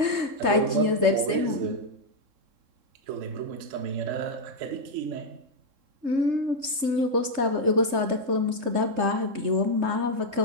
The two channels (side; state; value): left; late; 3.3 ms